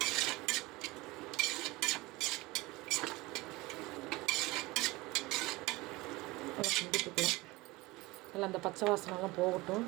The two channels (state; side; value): quieter; left; 21.7 dB